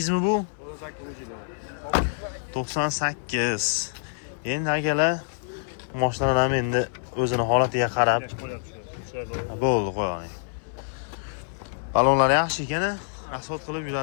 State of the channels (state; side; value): silent; right; 59 dB below the other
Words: mi bu? 98. Endi akalar mashinalar ham endi o'zini holatiga qarab bo'ldi, qo'ying. Balonlar yaxshi ekan, asfalt qilib